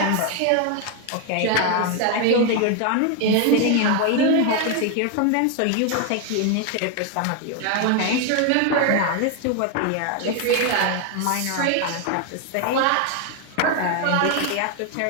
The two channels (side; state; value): both; different; correlation 0.01